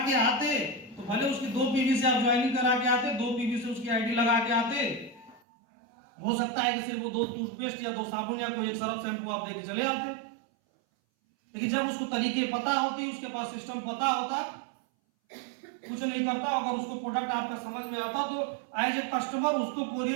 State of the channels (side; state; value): left; drops out; at 5.4 s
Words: के आते तो भले उसकी 2 पीवी से आप ज्वाइनिंग करा के आते, 2 पीवी से उसकी आईडी लगा के आते, हो सकता है कि सिर्फ वो 2 टूथपेस्ट या 2 साबुन या कोई एक सरफ शैम्पू आप देके चले आते। लेकिन जब उसको तरीके पता होती, उसके पास सिस्टम पता होता, कुछ नहीं करता। अगर उसको प्रोडक्ट आपका समझ में आता तो एज ए कस्टमर उसको